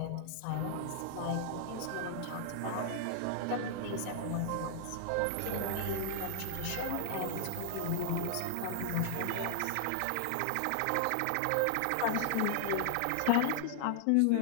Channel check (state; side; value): different; both; correlation 0.00